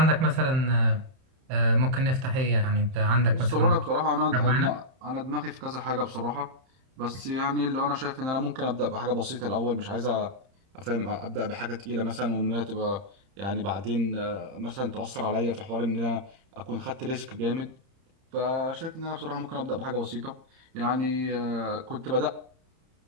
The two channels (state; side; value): late; left; 31 ms